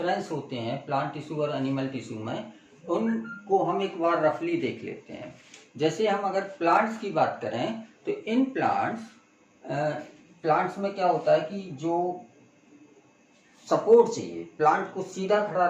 होते हैं प्लांट टिश्यू और एनिमल टिश्यू में, उनको हम एक बार रफली देख लेते हैं। जैसे हम अगर प्लांट्स की बात करें तो इन प्लांट्स में क्या होता है कि जो सपोर्ट चाहिए, प्लांट को सीधा खड़ा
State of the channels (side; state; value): both; identical; correlation 1.00